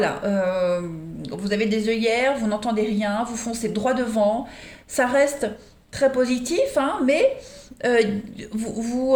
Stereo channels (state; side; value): identical; both; correlation 1.00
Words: Vous avez des œillères, vous n'entendez rien, vous foncez droit devant. Ça reste très positif, hein, mais